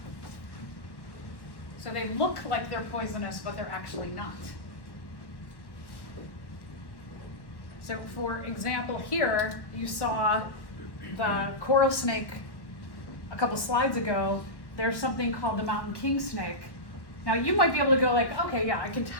So they look like they're poisonous, but they're actually not. So for example here, you saw the coral snake a couple slides ago. There's something called the mountain king snake. Now you might be able to go like, okay, yeah, I can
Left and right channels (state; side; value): late; right; 1.1 ms